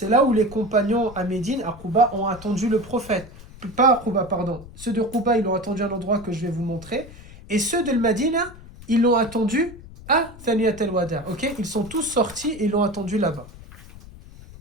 là où les compagnons à Médine, à Quba, ont attendu le prophète. Pas à Quba, pardon. Ceux de Quba, ils l'ont attendu à l'endroit que je vais vous montrer. Et ceux de Medina, ils l'ont attendu à Thaniyat al-Wada'. Ok? Ils sont tous sortis et ils l'ont attendu là-bas.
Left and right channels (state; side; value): noise; left; rumble, 18 dB below the sound